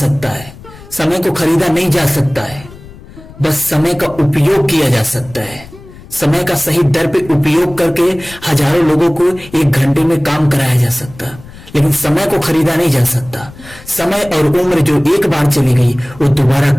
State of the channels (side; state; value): left; noise; rumble, 19 dB below the sound